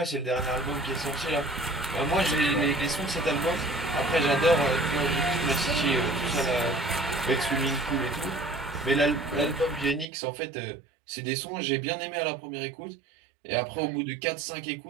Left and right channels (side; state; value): left; drops out; at 10.1 s